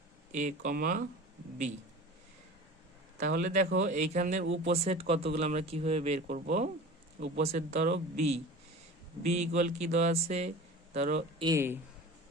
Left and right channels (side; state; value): both; normal; correlation 0.37